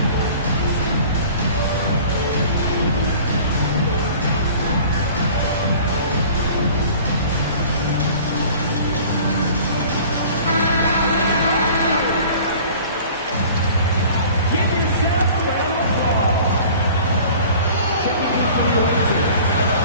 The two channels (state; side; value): inverted; both; correlation -0.46